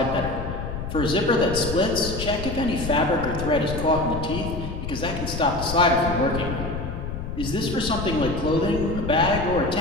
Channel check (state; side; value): noise; left; rumble, 6 dB below the sound